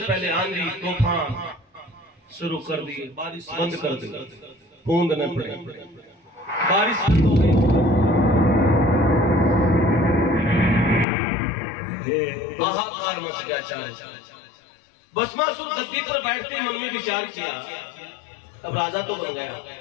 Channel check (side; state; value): right; drops out; at 11.1 s